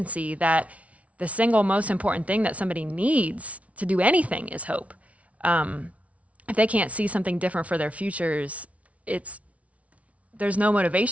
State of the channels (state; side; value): late; left; 0.066 ms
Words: that the single most important thing that somebody needs to do anything is hope. If they can't see something different for their futures, there's no